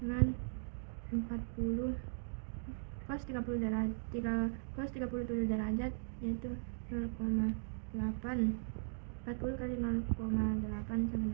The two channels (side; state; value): left; silent; digital silence